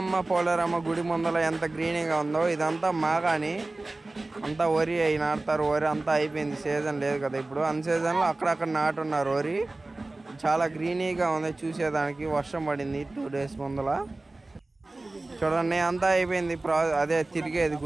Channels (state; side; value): quieter; left; 3.0 dB